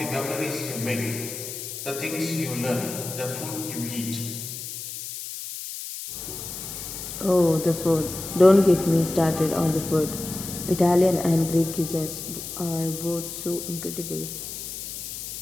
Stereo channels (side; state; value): left; noise; hiss, 8 dB below the sound